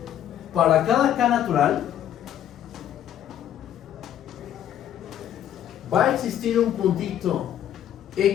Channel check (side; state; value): right; quieter; 10.7 dB